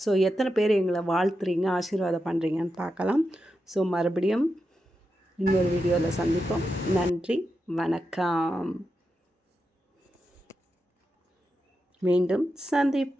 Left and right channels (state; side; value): normal; both; correlation 0.88